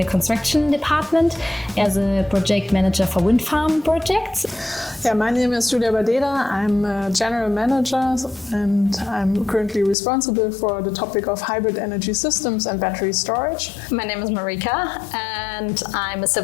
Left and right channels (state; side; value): drops out; right; at 10.0 s